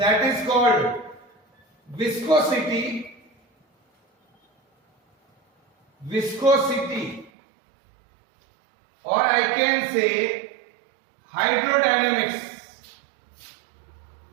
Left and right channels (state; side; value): drops out; left; at 7.3 s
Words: is called viscosity. Viscosity, or I can say hydrodynamics.